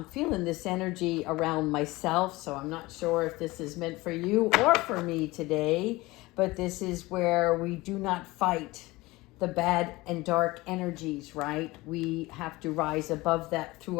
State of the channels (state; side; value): quieter; right; 20.8 dB